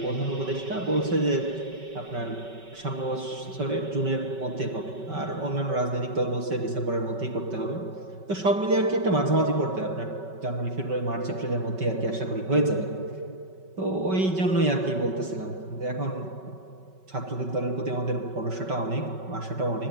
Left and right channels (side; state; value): left; late; 5.3 ms